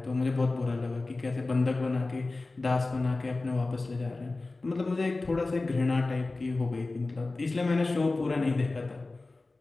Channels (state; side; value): quieter; right; 3.3 dB